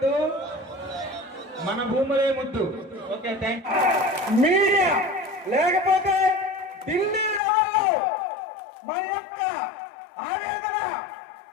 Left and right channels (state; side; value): drops out; right; at 7.4 s